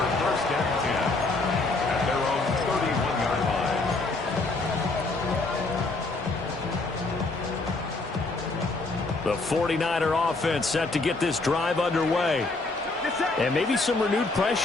1st and 10 at their own 31-yard line. The 49er offense set to get this drive underway. And maybe some renewed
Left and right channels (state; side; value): quieter; right; 3.3 dB